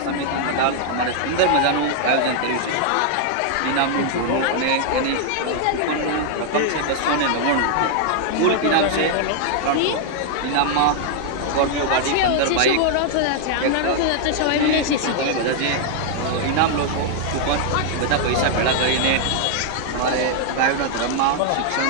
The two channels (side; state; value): both; different; correlation 0.00